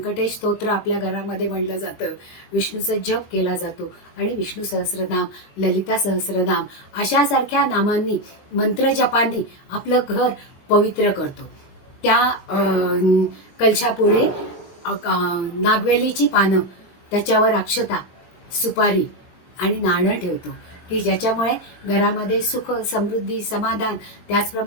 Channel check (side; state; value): right; late; 20 ms